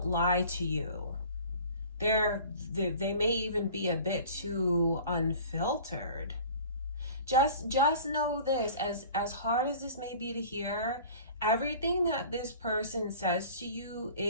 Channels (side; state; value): both; inverted; correlation -0.43